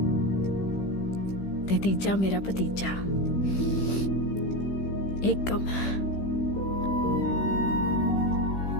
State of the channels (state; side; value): late; right; 15 ms